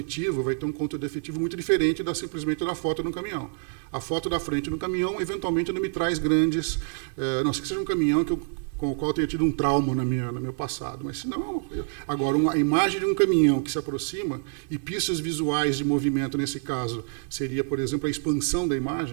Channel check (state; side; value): silent; left; 60 dB below the other